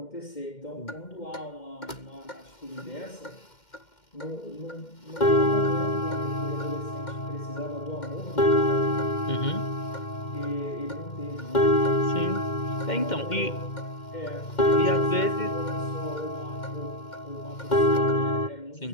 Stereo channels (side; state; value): right; late; 2.1 ms